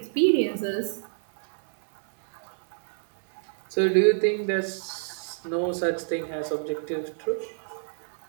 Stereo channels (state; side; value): silent; left; digital silence